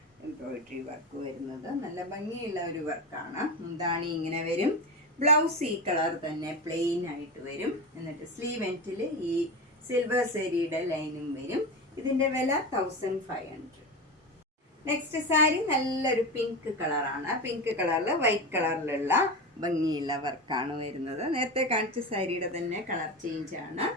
എംബ്രോയിഡറി വർക്ക് വരുന്നത് നല്ല ഭംഗിയുള്ള ഒരു വർക്കാണ്. മുന്താണി ഇങ്ങനെ വരും. ബ്ലൗസ് ഈ കളർ തന്നെ പ്ലെയിൻ ആയിട്ട് വരും. എന്നിട്ട് സ്ലീവ് എൻഡിൽ ഈ സിൽവർ സെരിയുടെ ലൈനും വരും. ഇതിൻ്റെ വില 1500. നെക്സ്റ്റ് സാരി നല്ലൊരു പിങ്ക് കളറാണ്. പിങ്ക് കളറിൽ വൈറ്റ് കളറിലുള്ള ഭംഗിയുള്ള വർക്കാണ് വരുന്നത്. നേരത്തെ കാണിച്ച സാരിയുടെ തന്നെ കളർ ചേഞ്ച് ആണ്.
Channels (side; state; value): both; normal; correlation 0.22